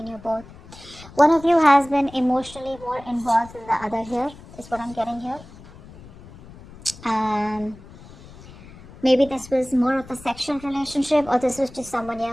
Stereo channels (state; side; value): noise; left; rumble, 19 dB below the sound